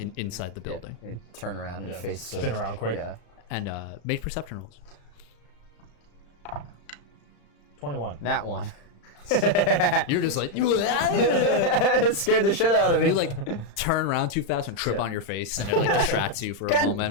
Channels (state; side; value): late; right; 35 ms